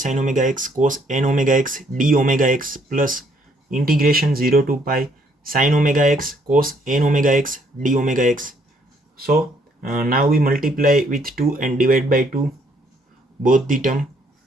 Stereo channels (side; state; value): both; normal; correlation 0.67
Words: sine omega x cos n omega x d omega x plus integration 0 to pi sine omega x cos n omega x d omega x. So now we multiply with 2 and divide by 2 both the term।